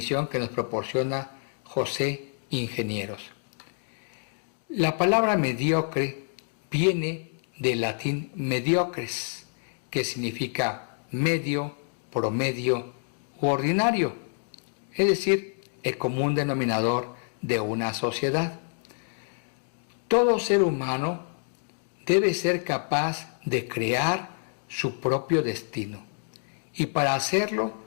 que nos proporciona José Ingenieros. La palabra mediocre viene del latín mediocres, que significa medio, promedio u ordinario, es decir, el común denominador de una sociedad. Todo ser humano debe ser capaz de crear su propio destino y para hacerlo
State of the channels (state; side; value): silent; right; 60 dB below the other